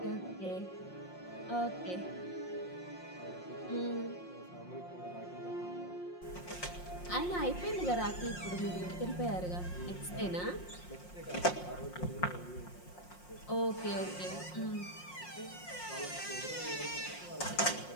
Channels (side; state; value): right; late; 5.6 ms